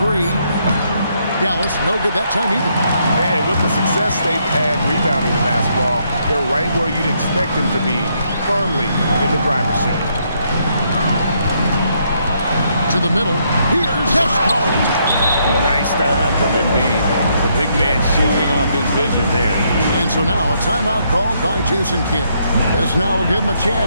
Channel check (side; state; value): both; inverted; correlation -0.74